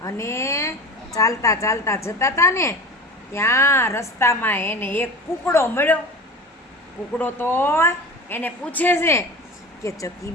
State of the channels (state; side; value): normal; both; correlation 0.33